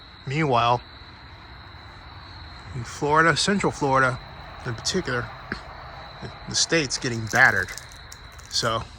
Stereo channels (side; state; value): both; identical; correlation 1.00